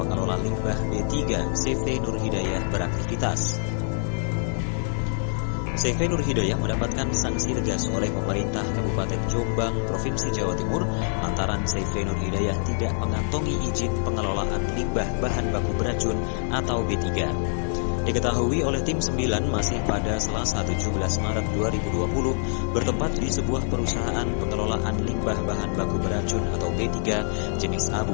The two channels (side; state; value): right; silent; 61 dB below the other